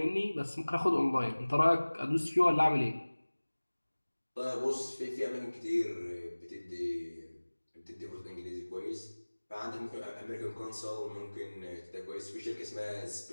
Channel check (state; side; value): inverted; both; correlation -1.00